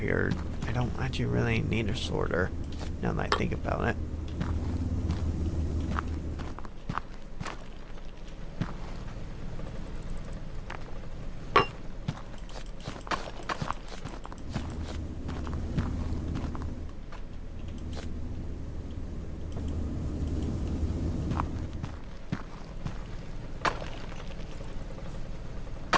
I don't actually really need a sorter, now that I think about it.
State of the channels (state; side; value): identical; both; correlation 1.00